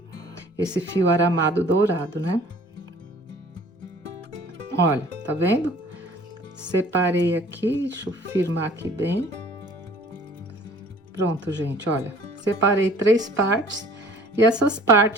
esse fio aramado dourado, né? Olha, tá vendo? Separei aqui, deixa eu firmar aqui bem. Pronto, gente, olha. Separei 3 partes, e essas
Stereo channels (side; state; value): both; normal; correlation 0.51